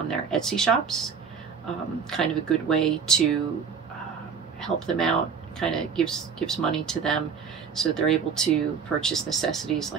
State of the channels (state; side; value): quieter; left; 6.2 dB